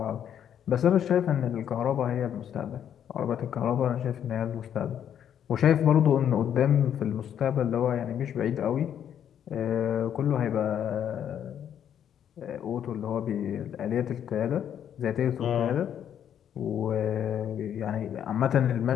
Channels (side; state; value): right; quieter; 9.4 dB